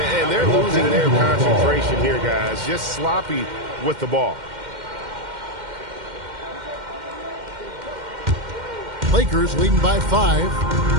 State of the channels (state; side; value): late; left; 2.1 ms